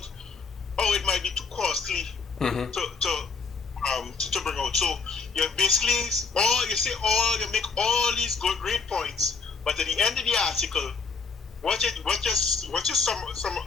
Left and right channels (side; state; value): right; quieter; 4.9 dB